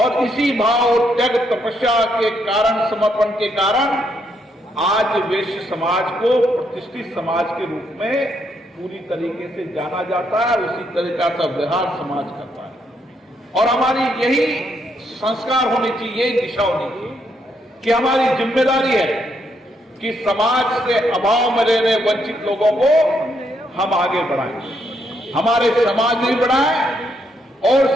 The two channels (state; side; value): normal; both; correlation 0.75